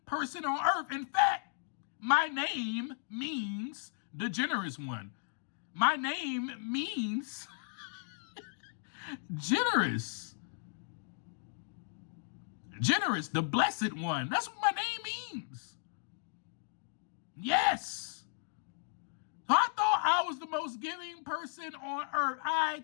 person on earth. In fact, my name means the generous one. My name means generous. Generous, the blessed one. That's what my name means. Yes. So I thought I was the most giving person on earth. I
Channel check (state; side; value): silent; right; digital silence